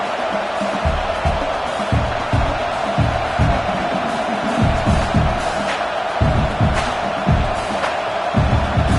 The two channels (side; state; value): both; identical; correlation 1.00